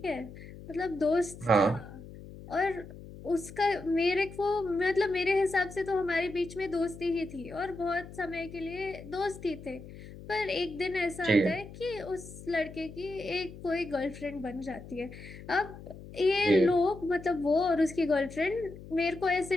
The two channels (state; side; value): noise; left; hum, 15 dB below the sound